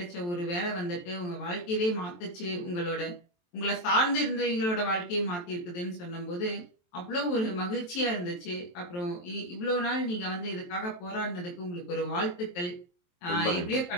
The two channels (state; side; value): late; right; 23 ms